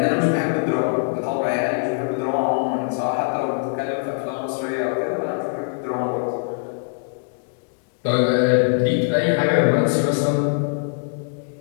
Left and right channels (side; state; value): right; silent; digital silence